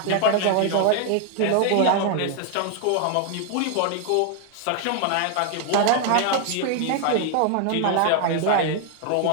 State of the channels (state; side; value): different; both; correlation 0.00